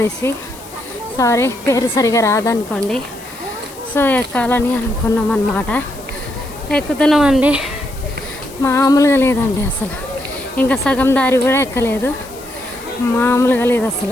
సారీ పేరు సరిగా రాదనుకోండి. సో ఎక్కాలని అనుకున్నాం అన్నమాట. ఎక్కుతున్నామండి, మామూలుగా లేదండి అసలు. ఇంకా సగం దారి కూడా ఎక్కలేదు, మామూలుగా లేదు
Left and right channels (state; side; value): noise; left; hiss, 19 dB below the sound